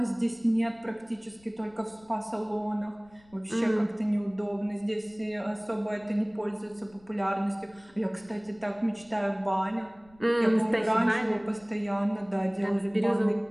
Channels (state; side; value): noise; left; rumble, 28 dB below the sound